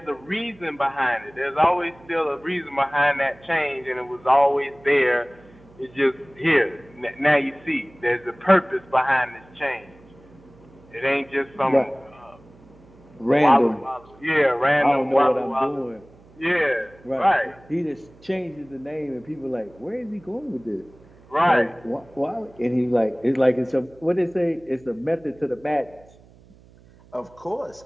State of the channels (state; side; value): noise; right; hum, 26 dB below the sound